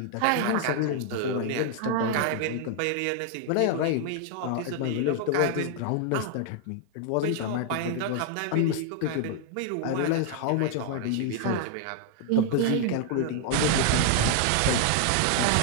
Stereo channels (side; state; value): both; different; correlation 0.00